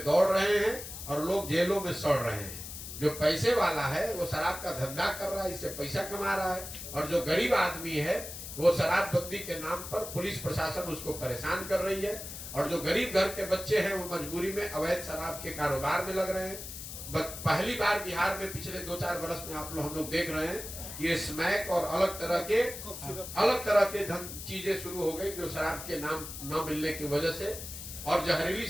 दौड़ रहे हैं और लोग जेलों में सड़ रहे हैं। जो पैसे वाला है वो शराब का धंधा कर रहा है, इससे पैसा कमा रहा है, और जो गरीब आदमी है वो शराबबंदी के नाम पर पुलिस प्रशासन उसको परेशान कर रही है। और जो गरीब घर के बच्चे हैं वो मजबूरी में अवैध शराब के कारोबार में लग रहे हैं। पहली बार बिहार में पिछले 2-4 वर्ष में हम लोग देख रहे हैं, ये स्मैक और अलग तरह के चीजें शुरू हो गई जो शराब के नाम न मिलने की वजह से। और जहरीली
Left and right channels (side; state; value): left; noise; hiss, 10 dB below the sound